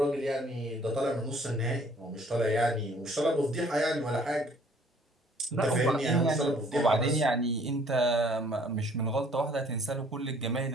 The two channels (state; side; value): normal; both; correlation 0.58